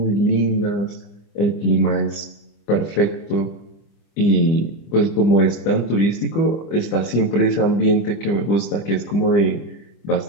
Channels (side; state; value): right; late; 25 ms